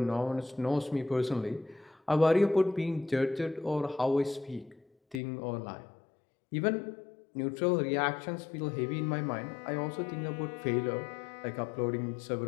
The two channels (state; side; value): drops out; right; at 5.2 s